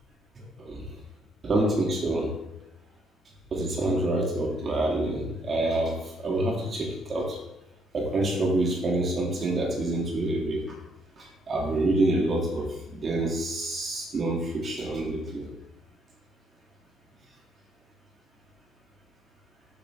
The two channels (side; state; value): both; normal; correlation 0.71